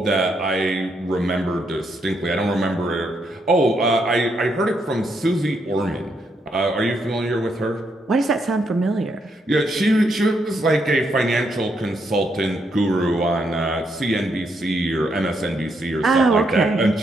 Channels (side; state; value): both; normal; correlation 0.77